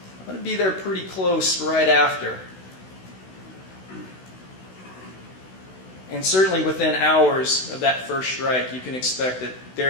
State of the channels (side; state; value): right; late; 16 ms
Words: going to be there pretty close right after. And certainly within hours of that first strike, you can expect that